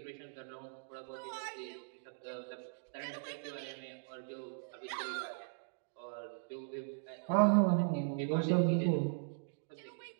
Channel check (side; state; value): left; silent; digital silence